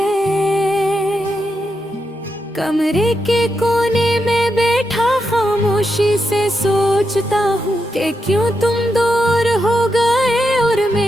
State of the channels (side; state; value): both; normal; correlation 0.85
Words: कमरे के कोने में बैठा खामोशी से सोचता हूँ कि क्यों तुम दूर हो गए और